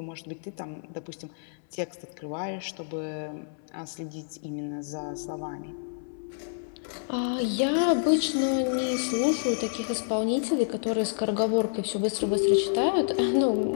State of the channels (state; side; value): silent; right; 59 dB below the other